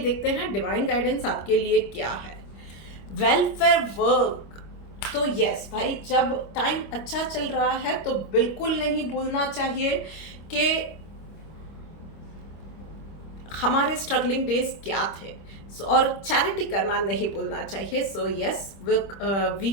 देखते हैं डिवाइन गाइडेंस आपके लिए क्या है। वेलफेयर वर्क, तो यस भाई, जब टाइम अच्छा चल रहा है तो बिल्कुल नहीं भूलना चाहिए कि हमारे स्ट्रगलिंग डेज क्या थे, और चैरिटी करना नहीं भूलना चाहिए। सो यस,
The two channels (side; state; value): right; late; 25 ms